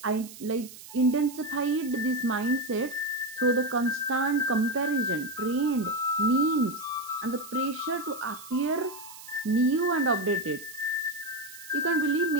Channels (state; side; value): noise; right; hiss, 16 dB below the sound